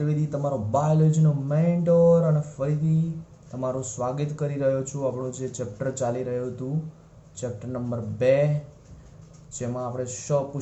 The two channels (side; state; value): both; identical; correlation 1.00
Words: તમારો બાયોલોજીનો મેન્ટોર, અને ફરીથી તમારું સ્વાગત કરી રહ્યો છું. આપણું જે ચેપ્ટર ચાલી રહ્યું હતું, ચેપ્ટર નંબર 2, જેમાં આપણે